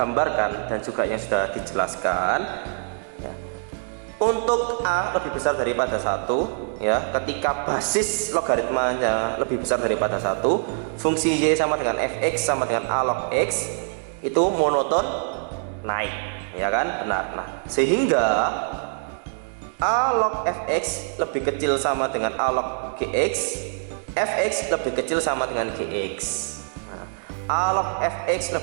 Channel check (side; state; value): left; silent; digital silence